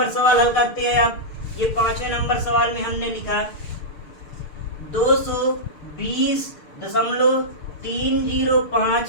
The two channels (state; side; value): late; right; 6.6 ms